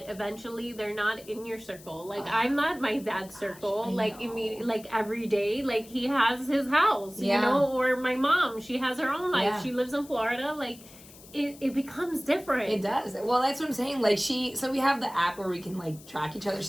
eventually they're not in your circle. Like, I'm not my dad's circle. Like, immediately, like every day, like he has his house, you know, or my mom, she has her own life. Yeah. She lives in Florida. Like, it becomes different. It does. Well, that's what I'm saying. Like, so we have the app where we can like track each other.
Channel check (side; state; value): left; noise; hiss, 20 dB below the sound